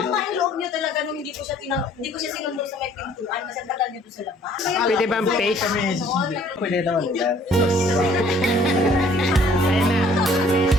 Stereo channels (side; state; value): both; normal; correlation 0.58